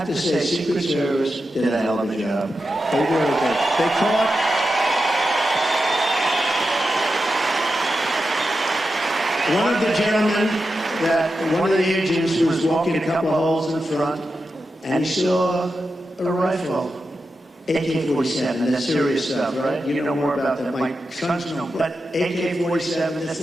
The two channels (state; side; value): normal; both; correlation 0.90